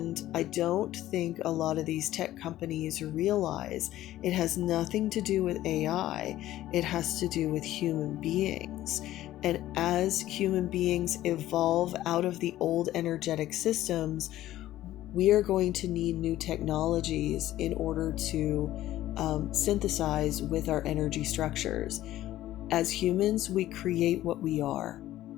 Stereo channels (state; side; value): quieter; right; 14.3 dB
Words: I don't think a lot of these tech companies realize it has nothing to do with AI. It has to do with human beings. And as human beings evolve out of the old energetic systems, we are going to need new technologies in order to synthesize with our energy structures. As humans, we create what we are.